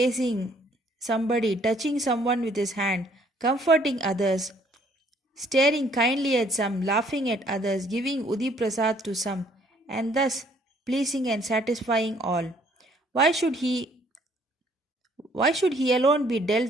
somebody, touching someone with his hand, comforting others, staring kindly at some, laughing at others, giving Udi Prasad to some, and thus pleasing and satisfying all. Why should he alone be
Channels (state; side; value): normal; both; correlation 0.62